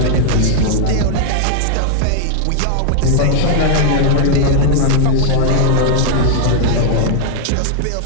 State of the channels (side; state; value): both; different; correlation 0.00